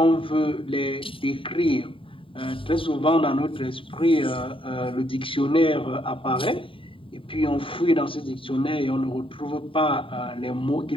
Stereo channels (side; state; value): right; late; 0.25 ms